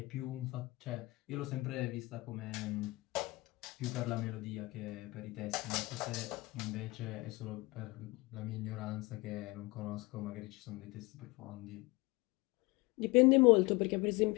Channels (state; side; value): quieter; right; 22.9 dB